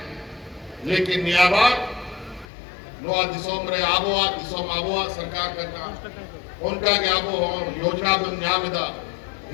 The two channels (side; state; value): right; drops out; at 2.5 s